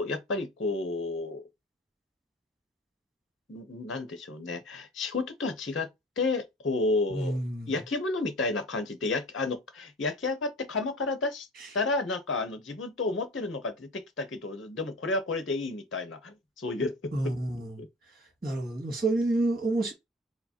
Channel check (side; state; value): both; normal; correlation 0.39